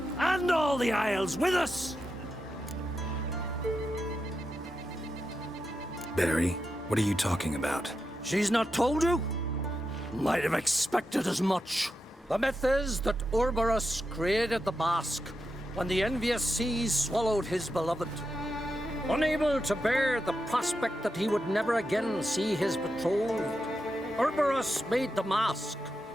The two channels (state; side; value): normal; both; correlation 0.87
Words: and all the Isles with us. Barry, what are you talking about? She's not told you? Might have expected as much. The myth is that Orberus created the mask when the envious seas swallowed his beloved. Unable to bear the prospect that he would never again see his betrothed, Orberus made the mask,